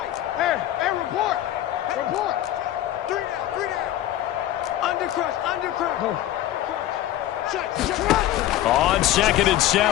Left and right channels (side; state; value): right; quieter; 13.3 dB